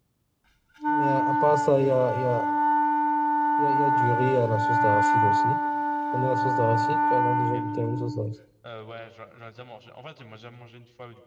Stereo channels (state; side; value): identical; both; correlation 1.00